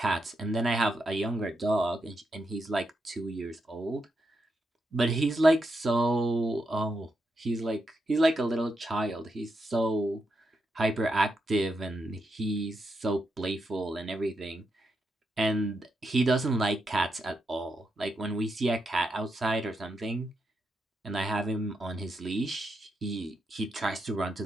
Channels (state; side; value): normal; both; correlation 0.83